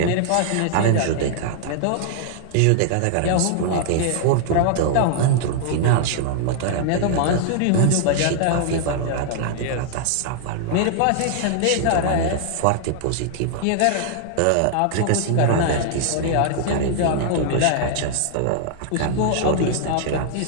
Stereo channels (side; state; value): both; different; correlation -0.01